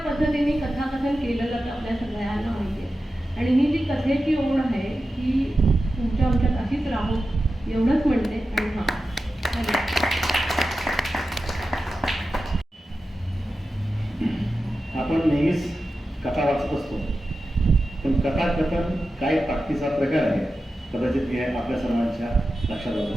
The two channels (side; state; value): both; normal; correlation 0.92